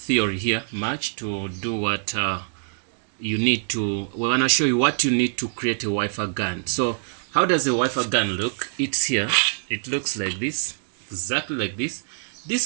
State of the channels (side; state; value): left; silent; digital silence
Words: here much to do what you need to. We wanna show you what you need to create a Wi-Fi gun. So how does a Wi-Fi gun look? It's here. It looks like this, exactly like this.